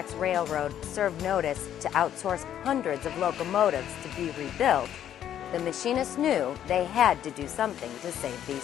Railroad served notice to outsource hundreds of locomotives to be rebuilt, the machinists knew they had to do something to save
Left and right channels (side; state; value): right; quieter; 10.5 dB